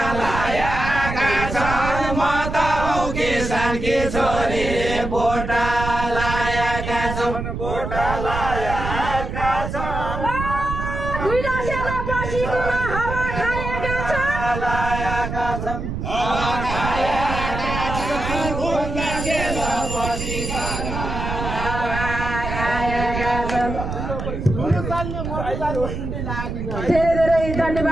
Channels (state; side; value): noise; right; rumble, 5 dB below the sound